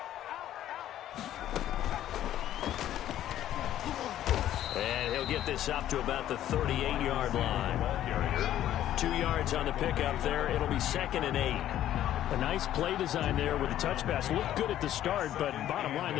And he'll get this up to about the 38-yard line. 2 yards on the pickup there. It'll be 2nd and 8. A nice play design there with the touch pass. Looked good at the start, but bottom line,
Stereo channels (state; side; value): quieter; right; 12.2 dB